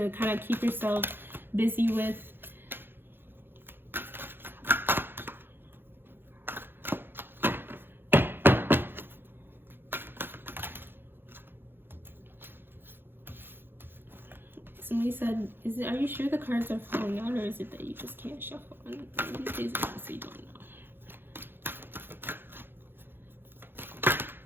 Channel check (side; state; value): left; late; 0.10 ms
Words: kind of keep yourself busy with. Somebody said, are you sure the cards are falling out, or is it that you just can't shuffle? And these days I honestly don't know.